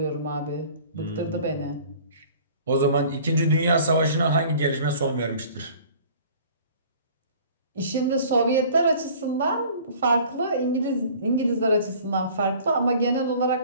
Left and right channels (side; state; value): both; inverted; correlation -0.48